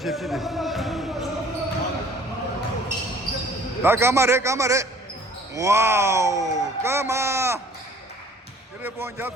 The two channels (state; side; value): normal; both; correlation 0.53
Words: 다 까마래. 와우, 까마. telephone